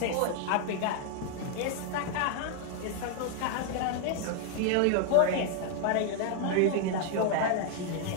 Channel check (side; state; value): both; different; correlation 0.00